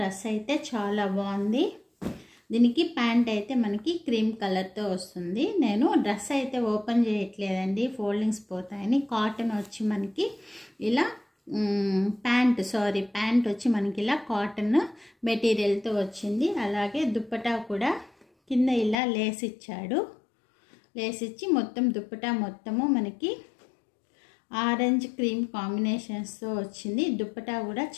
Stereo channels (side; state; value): right; drops out; at 18.9 s